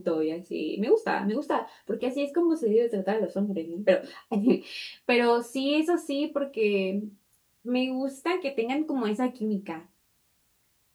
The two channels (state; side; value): identical; both; correlation 1.00